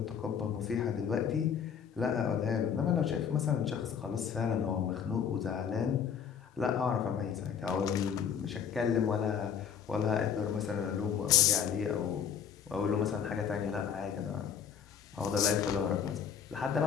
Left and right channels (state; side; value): quieter; right; 7.7 dB